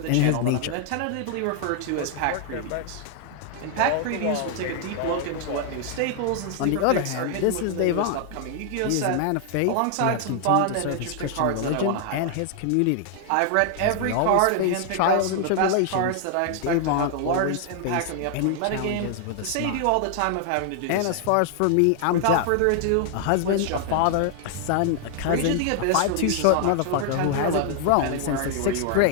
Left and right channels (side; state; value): both; different; correlation 0.00